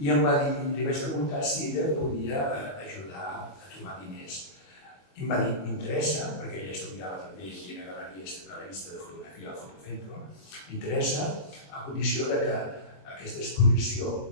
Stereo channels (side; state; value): right; late; 21 ms